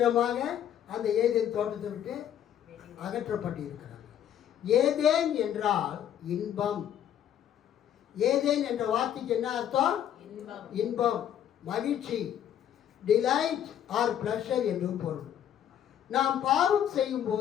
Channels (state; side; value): quieter; right; 10.1 dB